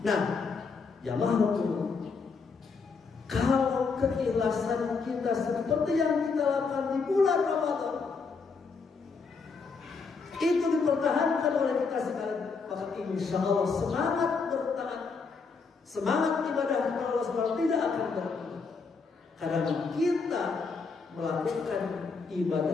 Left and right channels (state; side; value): quieter; right; 4.8 dB